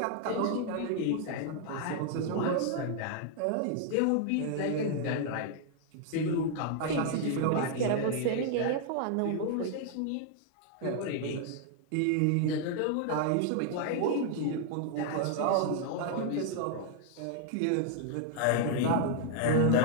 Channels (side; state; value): both; different; correlation 0.00